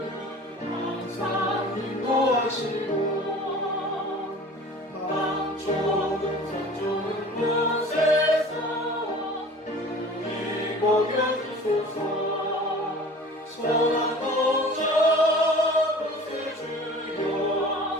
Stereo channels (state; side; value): normal; both; correlation 0.43